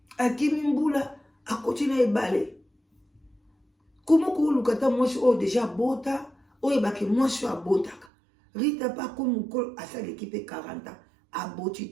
akimi mbula akoti na ebale komo koluka ta mwasi oyo deja abota oyebaki mwasi oyo abotaka Rita pa komi mokolo asaleki mpe 40 ans aboti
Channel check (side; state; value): left; drops out; at 8.1 s